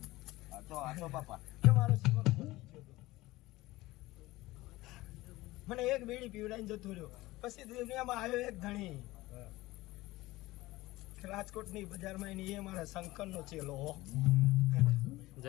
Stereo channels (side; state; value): right; quieter; 18.8 dB